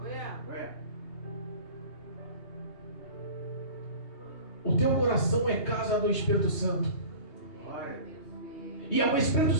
Aleluia. Olha. O teu coração é casa do Espírito Santo. Glória. E é o Espírito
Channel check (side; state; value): right; late; 2.8 ms